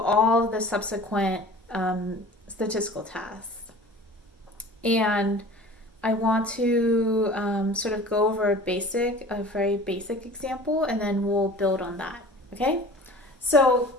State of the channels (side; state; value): both; normal; correlation 0.42